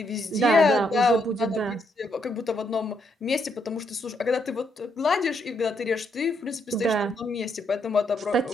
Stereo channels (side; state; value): both; normal; correlation 0.76